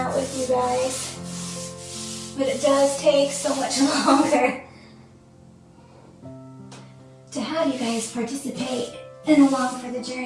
with you guys, but it does take so much longer to have you guys participate and along for the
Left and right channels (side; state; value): both; identical; correlation 1.00